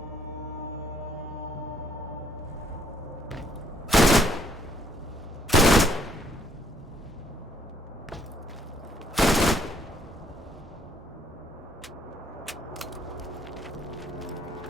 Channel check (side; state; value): both; normal; correlation 0.67